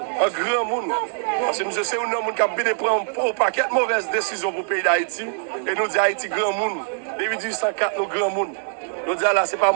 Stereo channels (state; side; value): silent; left; digital silence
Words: grand monde. Parce que monsieur, c'est un homme qui a bien prendre un paquet de mauvaises décisions pour le pays d'Haïti. Et nous disons Haïti grand monde. Depuis 1804, nous grand monde. Nous disons là, ce n'est pas un